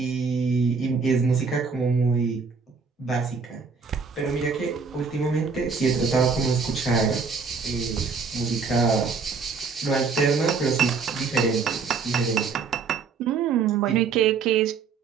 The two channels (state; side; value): quieter; left; 5.2 dB